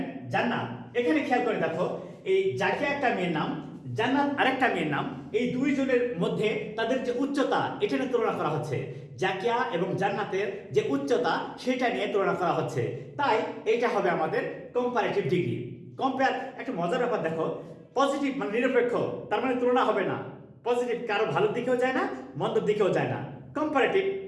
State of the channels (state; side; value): identical; both; correlation 1.00